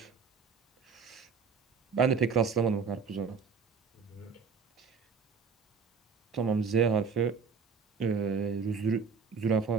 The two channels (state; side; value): quieter; left; 5.5 dB